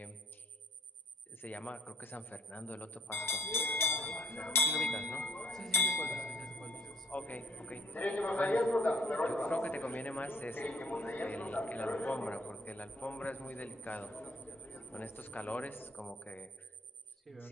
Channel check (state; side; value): normal; both; correlation 0.63